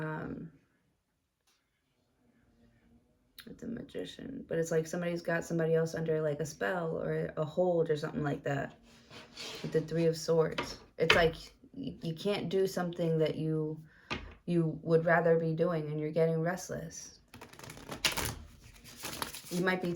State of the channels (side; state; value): both; identical; correlation 1.00